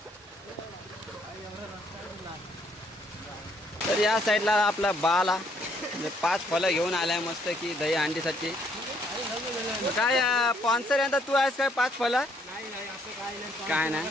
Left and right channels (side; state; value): both; normal; correlation 0.68